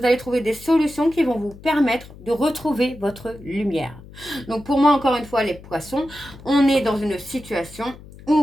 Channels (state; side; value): noise; left; hum, 19 dB below the sound